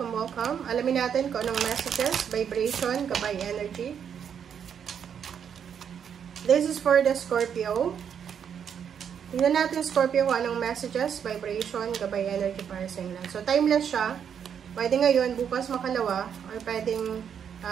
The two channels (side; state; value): left; quieter; 8.0 dB